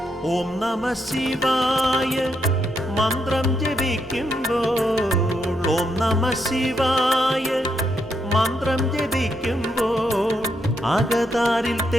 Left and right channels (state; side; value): normal; both; correlation 0.79